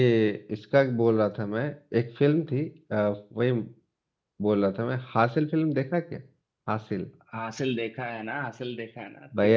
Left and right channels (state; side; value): identical; both; correlation 1.00